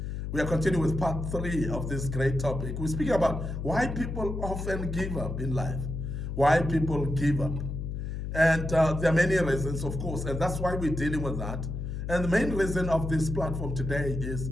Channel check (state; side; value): noise; left; hum, 4 dB below the sound